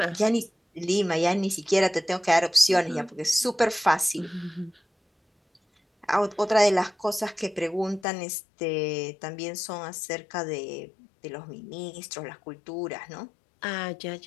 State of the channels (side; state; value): right; drops out; at 8.1 s